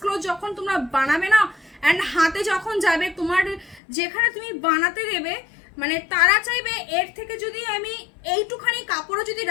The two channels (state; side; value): drops out; right; at 3.8 s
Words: যখন তোমরা বানাবে না অ্যান্ড হাতে যখন যাবে, তোমার যেখানে তুমি বানাতে দেবে মানে তারা চাইবে এর থেকে যদি আমি এইটুখানি কাপড়ও যদি